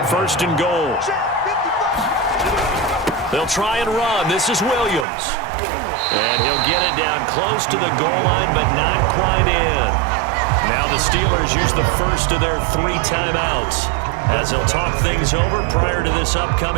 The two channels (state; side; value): drops out; left; at 5.1 s